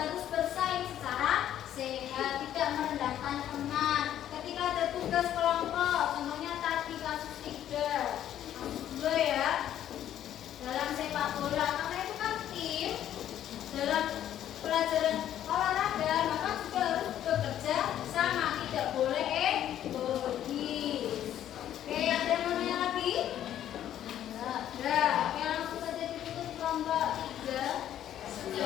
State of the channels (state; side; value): quieter; right; 11.2 dB